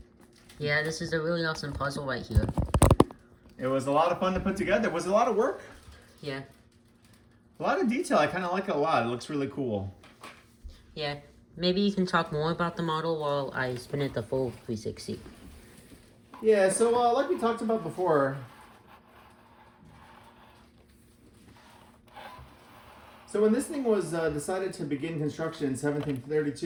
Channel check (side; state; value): both; identical; correlation 1.00